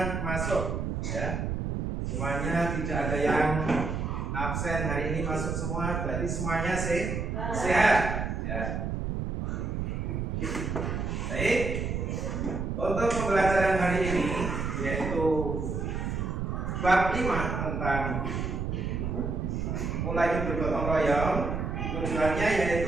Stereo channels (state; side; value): noise; right; rumble, 2 dB below the sound